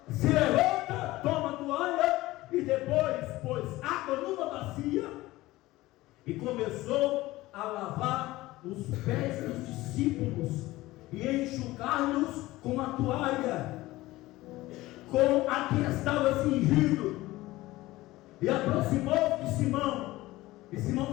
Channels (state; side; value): quieter; right; 18.2 dB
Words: se levanta, toma a toalha e depois pôs água numa bacia e começou a lavar os pés dos discípulos e enxugar-los com a toalha. com a que estava cingido, e aproximou-se de Simão, e Simão